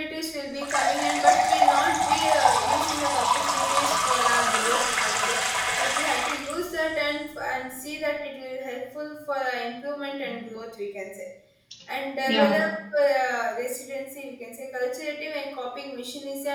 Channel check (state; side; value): identical; both; correlation 1.00